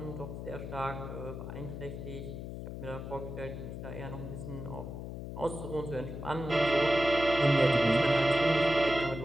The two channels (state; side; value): noise; left; hum, 8 dB below the sound